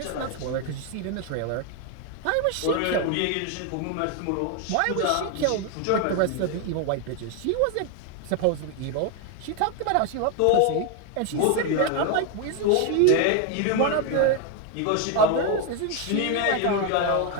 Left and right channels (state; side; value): different; both; correlation 0.01